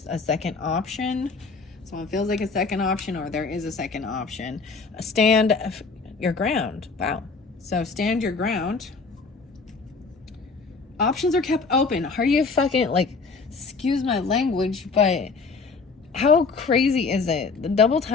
a second option. Someone feels like a second option, or there is a second option. Stand your ground. Wow. So stand your ground. Options are kept open. Are you fucking, like, excuse my language, but how crazy is it? The double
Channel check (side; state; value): right; quieter; 4.5 dB